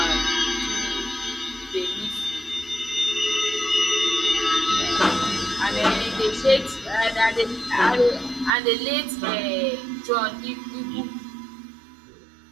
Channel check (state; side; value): drops out; left; at 8.5 s